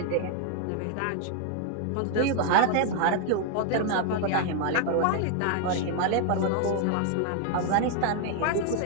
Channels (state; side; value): different; both; correlation 0.00